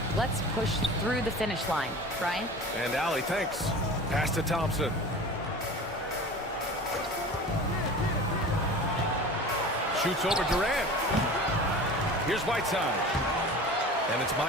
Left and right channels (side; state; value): both; normal; correlation 0.37